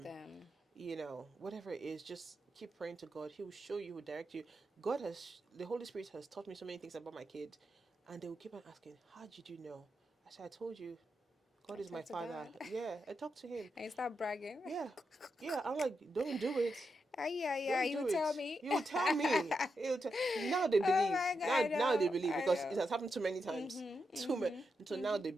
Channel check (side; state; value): both; normal; correlation 0.85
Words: them. Whatever it is, just keep praying to God. He will show you, He will direct you. The Holy Spirit has taught me so many things about my kid, and they will keep on asking, how did you know? I said, I told you, God I is my talk to father. God. Yeah, I talked to Him. And you start bragging. Yeah, yeah. I'm like, don't do it. Yeah, yeah, Don't you do tell it. me. You tell me. Now they Oh believe. my God, Now, I now they know, believe, I because it know. has happened too many times. Too many. So now they